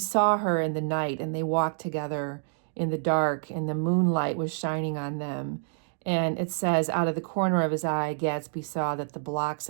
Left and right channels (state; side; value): silent; left; digital silence